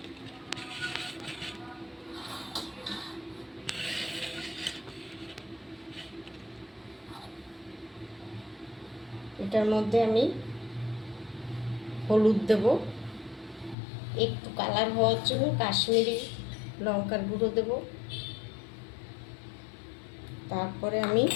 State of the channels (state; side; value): drops out; right; at 13.8 s